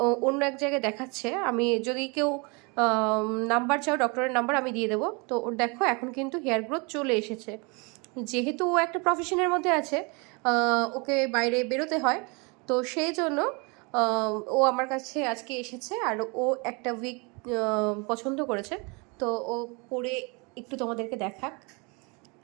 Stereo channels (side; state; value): left; quieter; 30.3 dB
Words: অন্য এক জায়গায় দেখাচ্ছে। আমি যদি কেউ নাম্বার চাও, ডক্টরের নাম্বার আমি দিয়ে দেবো। তো ওর দেখো এখন কিন্তু হেয়ার গ্রোথ চলে এসেছে। যেহেতু ও একটা প্রফেশনের মধ্যে আছে, ওকে বাইরে বেরোতে হয়, তো সেই জন্য ও আমার কাছে আজকে এসেছে। আর ও একটা উইক পছন্দ করেছে, তো ও পরে একটু তোমাদেরকে দেখাক।